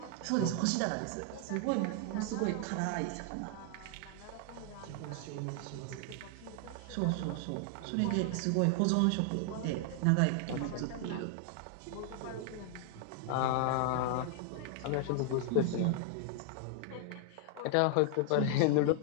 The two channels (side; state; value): both; different; correlation 0.00